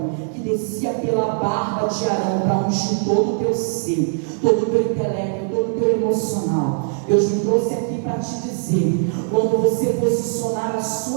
que descia pela barba de Arão para ungir todo o teu ser, todo o teu intelecto, todo o teu emocional. Deus me trouxe aqui para te dizer, quando você posicionar a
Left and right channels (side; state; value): left; silent; digital silence